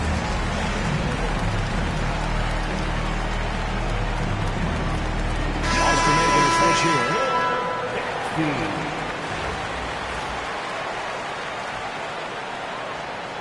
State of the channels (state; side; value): identical; both; correlation 1.00